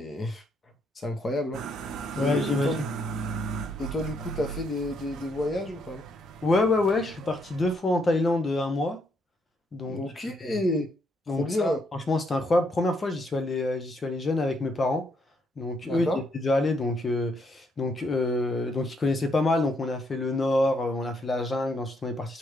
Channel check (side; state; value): both; normal; correlation 0.74